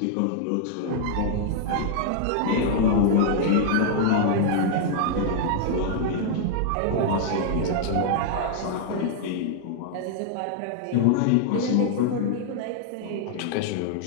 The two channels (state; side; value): different; both; correlation -0.01